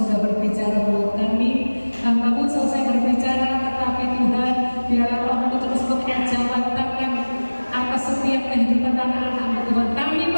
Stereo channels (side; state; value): both; inverted; correlation -1.00